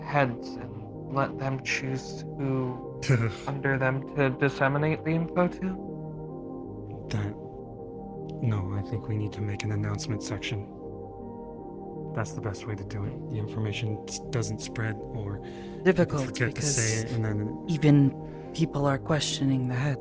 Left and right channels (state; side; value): identical; both; correlation 1.00